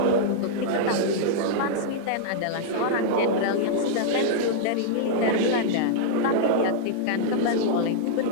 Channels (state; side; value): different; both; correlation -0.02